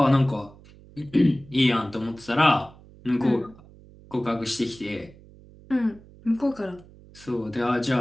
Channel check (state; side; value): noise; right; hum, 23 dB below the sound